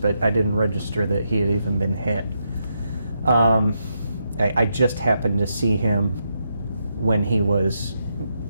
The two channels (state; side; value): inverted; both; correlation -0.82